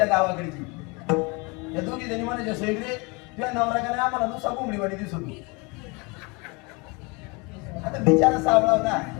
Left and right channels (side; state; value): right; quieter; 28.5 dB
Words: गावाकडची. त्या दोघी जणी म्हणायच्या सेंद्री तुझ्या नवऱ्याकडे आम्हाला नुसता कोंबडीवाडी दिसत होती. आता बिचारा सावळा होता